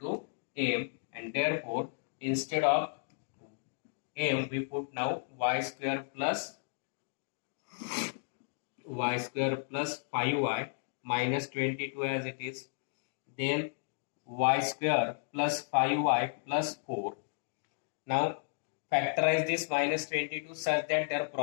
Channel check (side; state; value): right; silent; digital silence